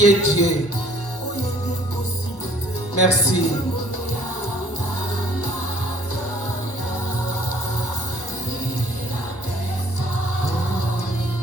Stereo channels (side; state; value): both; normal; correlation 0.59